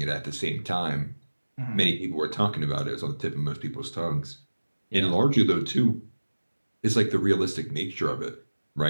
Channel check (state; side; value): inverted; both; correlation -1.00